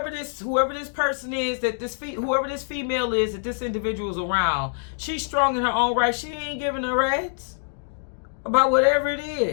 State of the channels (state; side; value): silent; right; digital silence